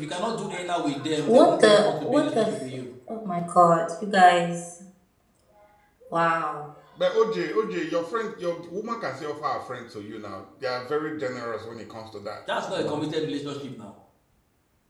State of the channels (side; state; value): both; identical; correlation 1.00